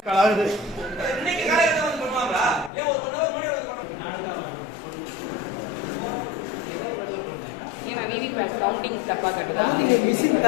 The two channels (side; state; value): right; drops out; at 2.7 s